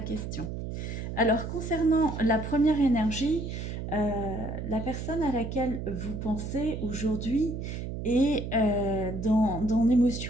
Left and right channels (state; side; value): noise; right; hum, 6 dB below the sound